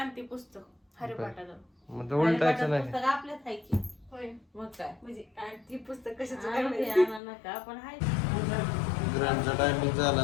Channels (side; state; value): right; drops out; at 7.2 s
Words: पुस्तक हरिपाठाचं. मग तर उलटायचं नाही. पुस्तक आपल्याच आहे की. होय मग काय म्हणजे ती पुस्तक कशाचं काय नका पण आहे. ग्रँडचा टायमिंग झाला